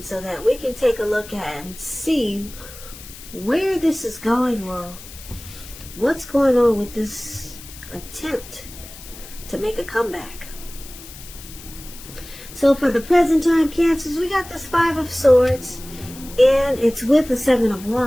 so that we can take a look at and see where this is going, or what's going on with this attempt to make a comeback. So for the present time, Cancers, we got this Five of Swords, and it's with the Seven of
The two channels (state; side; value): noise; left; hiss, 16 dB below the sound